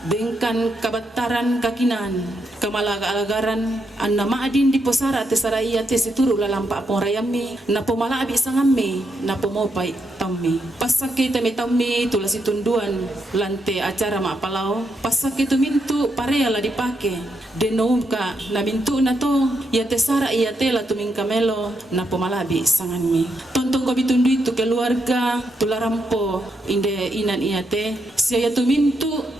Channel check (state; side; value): normal; both; correlation 0.80